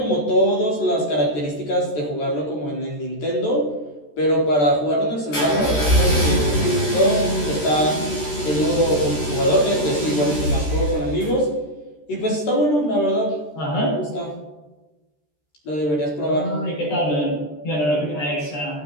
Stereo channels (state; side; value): late; right; 13 ms